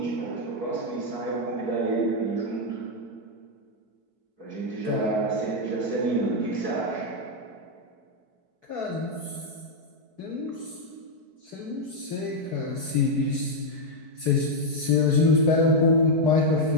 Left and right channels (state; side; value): late; left; 4.6 ms